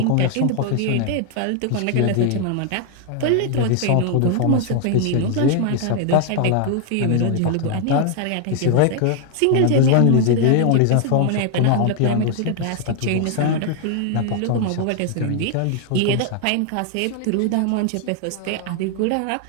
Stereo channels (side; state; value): both; different; correlation 0.00